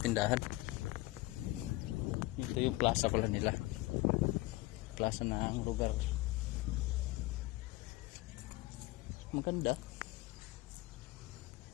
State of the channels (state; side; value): quieter; right; 20.1 dB